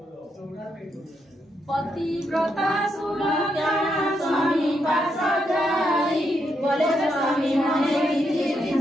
पतिव्रता सुलग्ना स्वामी पास जाई बोले स्वामी मने किछि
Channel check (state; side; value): normal; both; correlation 0.80